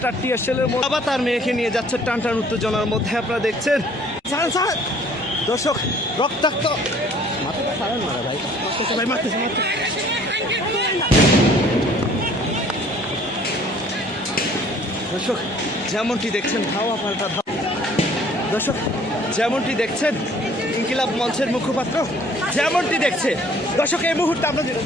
আর টিয়ারশেলের মধ্যে বাবা তার মেয়েকে নিয়ে যাচ্ছে টানটান উত্তেজনার মধ্যে। আপনারা দেখছেন দর্শক, রক্তাক্ত দর্শক যেমনটি দেখছেন ধাওয়া পাল্টা ধাওয়া দর্শক, যেমনটি দেখছেন ইনকিলাব মঞ্চের মুখপাত্র যেমনটি দেখছে দর্শক, এই মুহূর্তে আমরা যেটা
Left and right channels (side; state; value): both; normal; correlation 0.56